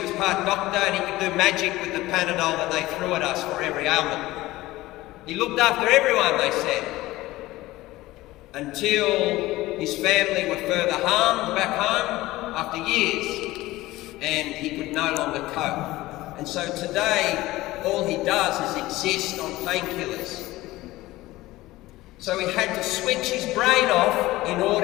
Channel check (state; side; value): quieter; right; 18.0 dB